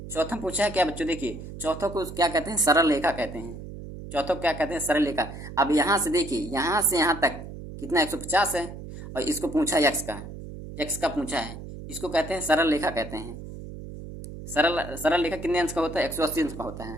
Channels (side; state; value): right; noise; hum, 11 dB below the sound